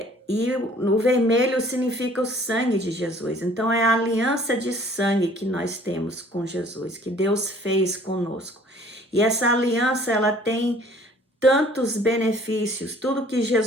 e o vermelho significa o sangue de Jesus. Então é a aliança de sangue que nós temos com Jesus, que Deus fez conosco. E essa aliança, ela tem tantos benefícios, tudo que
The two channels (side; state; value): both; normal; correlation 0.54